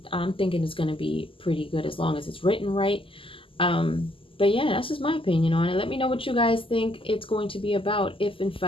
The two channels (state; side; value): late; right; 0.25 ms